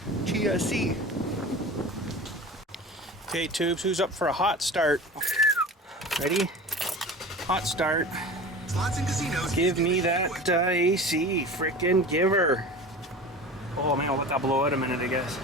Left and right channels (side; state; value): both; normal; correlation 0.35